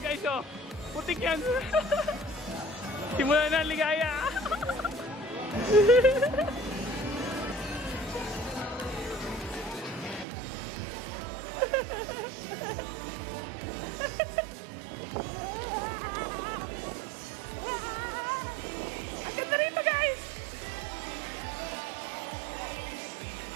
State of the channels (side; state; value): left; drops out; at 10.2 s